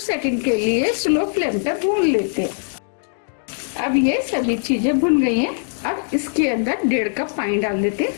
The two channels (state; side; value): silent; right; 64 dB below the other